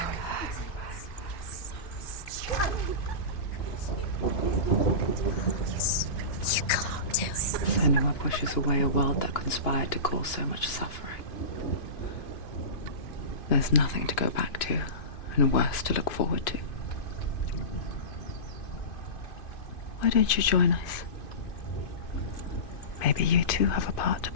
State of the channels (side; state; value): right; late; 2.5 ms